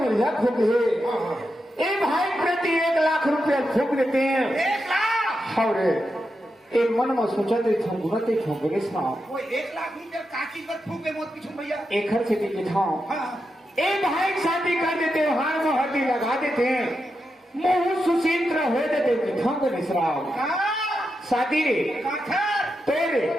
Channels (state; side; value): normal; both; correlation 0.87